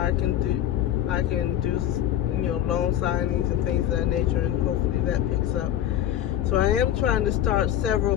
can do, you know, loan signings and things of that nature, and hopefully that picks up. So I am trying to start several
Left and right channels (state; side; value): quieter; right; 11.5 dB